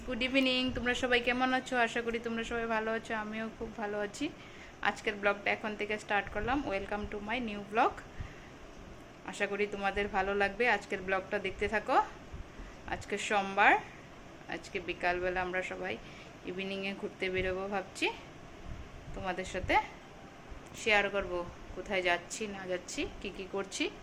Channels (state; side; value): identical; both; correlation 1.00